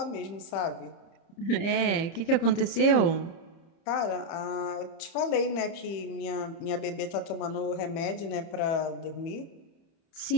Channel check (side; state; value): right; late; 30 ms